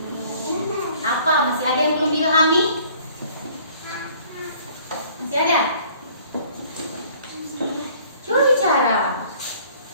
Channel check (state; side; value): inverted; both; correlation -0.55